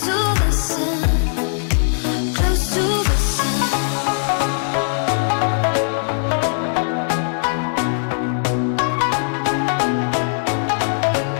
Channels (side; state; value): right; silent; digital silence